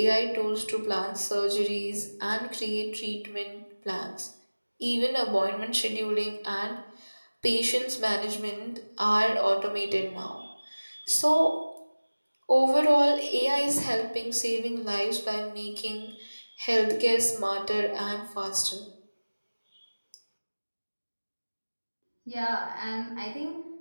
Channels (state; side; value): inverted; both; correlation -1.00